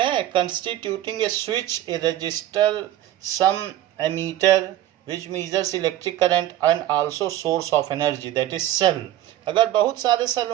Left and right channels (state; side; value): quieter; left; 13.1 dB